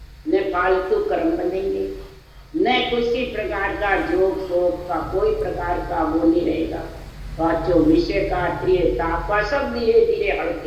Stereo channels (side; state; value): both; identical; correlation 1.00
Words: न फालतू कर्म बनेंगे, न किसी प्रकार का जोक शोक का कोई प्रकार का वो नहीं रहेगा। बातों विषय का प्रियता का सब धीरे धीरे